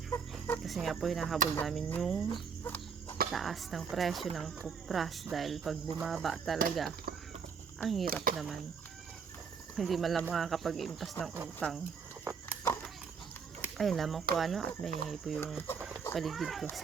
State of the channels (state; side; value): quieter; left; 6.0 dB